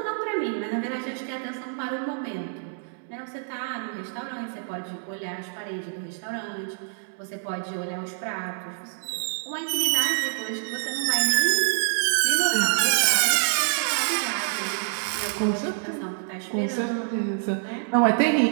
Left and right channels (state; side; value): silent; left; 61 dB below the other